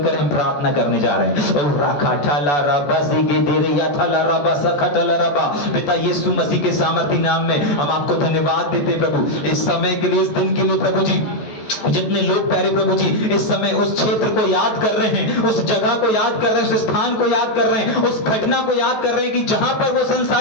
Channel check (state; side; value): late; right; 14 ms